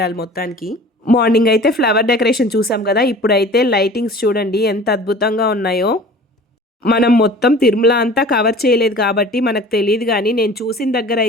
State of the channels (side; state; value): both; normal; correlation 0.44